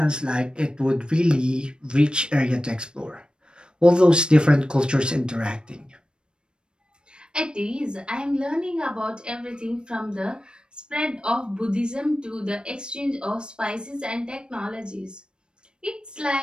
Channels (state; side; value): late; left; 0.052 ms